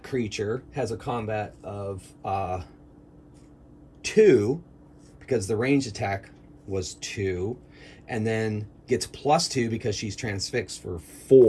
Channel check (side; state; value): both; identical; correlation 1.00